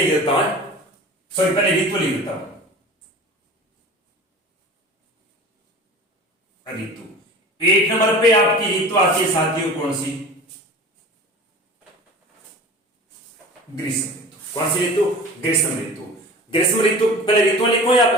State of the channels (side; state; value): both; normal; correlation 0.38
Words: देता हूं, सॉरी पहले ऋतु लिख देता हूं। ऋतु 1 नंबर पे आपकी ऋतु आती है साथियों कौन सी, ग्रीष्म ऋतु। कौन सी ऋतु, ग्रीष्म ऋतु। ग्रीष्म ऋतु पहले ऋतु लिखो या